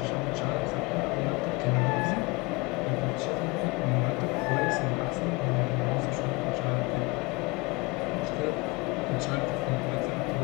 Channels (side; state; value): right; quieter; 26.2 dB